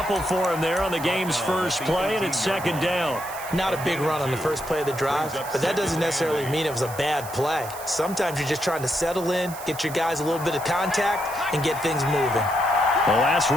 for him there on the game's first play, and it's second down. Not a big run on the first play of the drive, but that doesn't necessarily mean it was a bad play. Sometimes you're just trying to settle in, get your guys a little bit of contact, and get things moving. The last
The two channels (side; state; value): right; noise; hiss, 14 dB below the sound